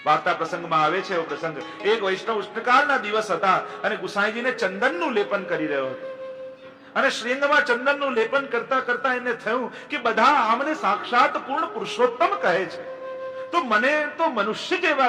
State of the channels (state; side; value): identical; both; correlation 1.00